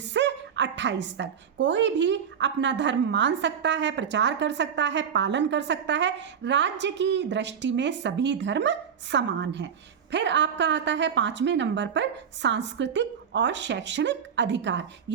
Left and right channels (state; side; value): quieter; left; 7.7 dB